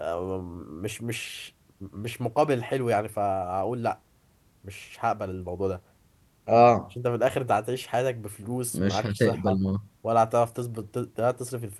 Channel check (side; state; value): both; identical; correlation 1.00